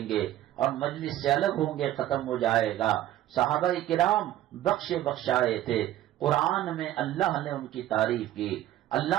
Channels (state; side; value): quieter; left; 13.4 dB